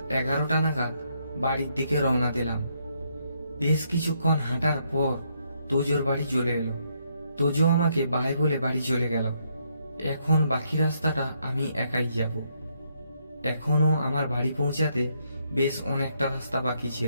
11টা নাগাদ বাড়ির দিকে রওনা দিলাম। বেশ কিছুক্ষণ হাঁটার পর তোজোর বাড়ি চলে এলো। তোজো আমাকে বাই বলে বাড়ি চলে গেল। এখন বাকি রাস্তাটা আমি একাই যাব। এখনো আমার বাড়ি পৌঁছাতে বেশ অনেকটা রাস্তা বাকি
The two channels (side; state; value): both; inverted; correlation -0.74